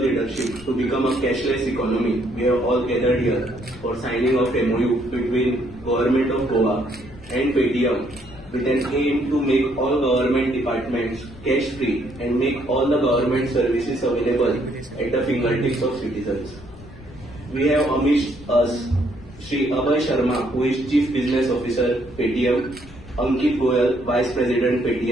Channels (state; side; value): noise; left; rumble, 19 dB below the sound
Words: to become a cashless economy, we have all gathered here for signing of MOU between Government of Goa and Paytm with an aim to make all government departments cash free and make all the government services available at the fingertips of citizens. We have amidst us Shri Abhay Sharma, who is Chief Business Officer Paytm, Ankit Goyal, Vice President